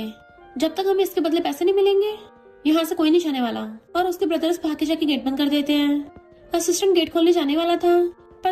जब तक हमें इसके बदले पैसे नहीं मिलेंगे यहाँ से कोई नहीं जाने वाला। और उसके ब्रदर्स भाग के जाके गेट बंद कर देते हैं। असिस्टेंट गेट खोलने जाने वाला था पर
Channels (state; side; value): identical; both; correlation 1.00